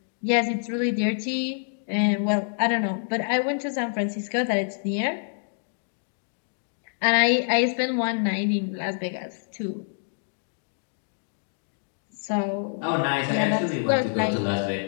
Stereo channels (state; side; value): silent; right; digital silence